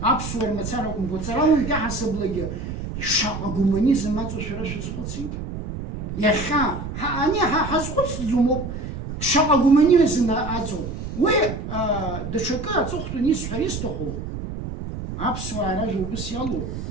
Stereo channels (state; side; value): noise; right; rumble, 7 dB below the sound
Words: أبصور مثلاً كوتراوي كاع حسب لجني شاق كومونيزم ما تشراش سقطي يا خا أنا حسقط زومو شاق كومونيزم أزو و دشكا تخطو نيس حريستخو أبصور رجل بس يلو